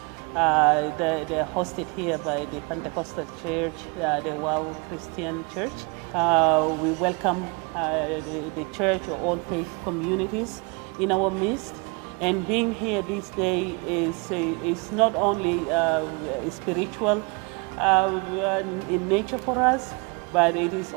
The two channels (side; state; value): left; quieter; 30.9 dB